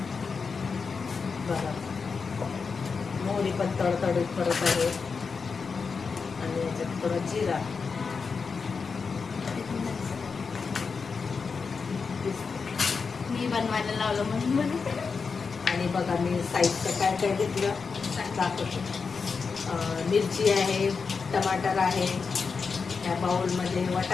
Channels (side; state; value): right; quieter; 5.2 dB